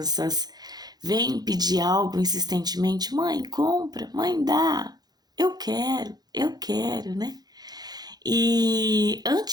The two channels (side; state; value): left; late; 0.19 ms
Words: vêm pedir algo insistentemente, mãe, compra, mãe, dá, eu quero, né? E